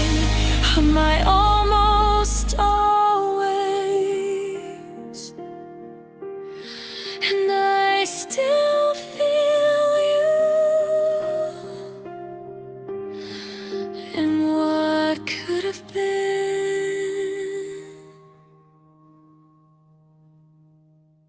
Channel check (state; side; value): identical; both; correlation 1.00